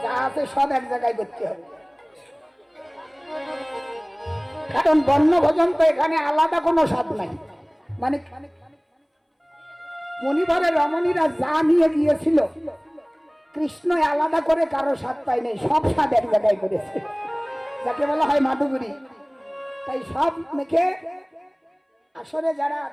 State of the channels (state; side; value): identical; both; correlation 1.00